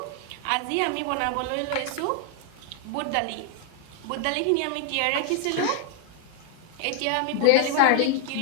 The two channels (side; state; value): both; different; correlation 0.00